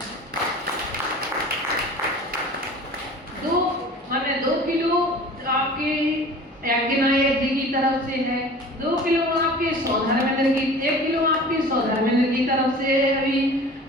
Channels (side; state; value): both; normal; correlation 0.42